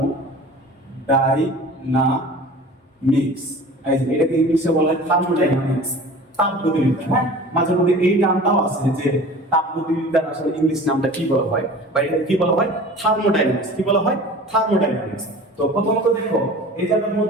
ডাইনামিক্স। এটাকে ইংলিশে বলা হয় থার্মোডাইনামিক্স, তাপগতিবিদ্যা। হ্যাঁ, মাঝে মধ্যে এই নামটাও আছে যে তাপগতিবিদ্যার আসলে ইংলিশ নামটা কি বলা হয়, বা এটাকে কি বলা হয়, থার্মোডাইনামিক্স। কি বলা হয়, থার্মোডাইনামিক্স। তো প্রথমত দেখো এই জায়গার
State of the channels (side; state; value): both; normal; correlation 0.41